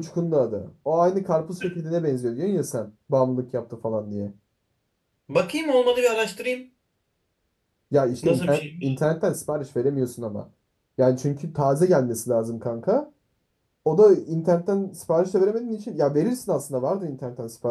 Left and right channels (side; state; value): both; identical; correlation 1.00